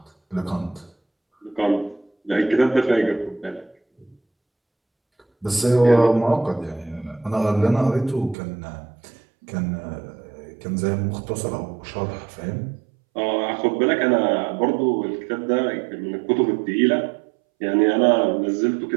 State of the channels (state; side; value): drops out; left; at 8.3 s